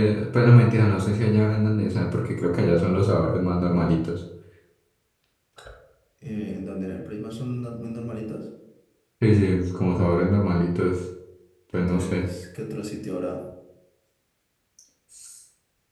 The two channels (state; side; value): identical; both; correlation 1.00